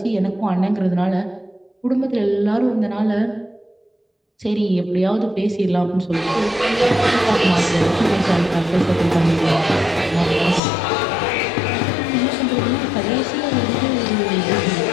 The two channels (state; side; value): drops out; right; at 10.6 s